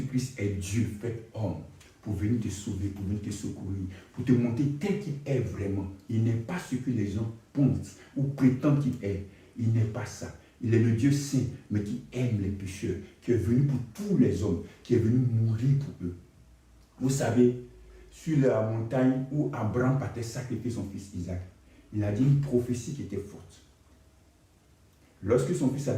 est Dieu fait homme. Pour venir te sauver, pour venir te secourir, pour te montrer tel qu'il est vraiment. Il n'est pas ce que les gens pensent ou prétendent qu'il est. Il n'est pas ça. Il est le Dieu saint, mais qui aime les pécheurs, qui est venu pour tous les hommes, qui est venu mourir pour eux. Vous savez, sur la montagne où Abraham partait sacrifier son fils Isaac, il a dit une prophétie qui était forte. Lorsque son fils a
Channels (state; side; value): identical; both; correlation 1.00